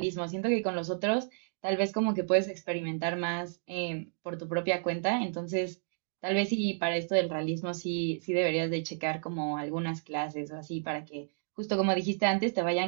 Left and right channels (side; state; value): left; silent; digital silence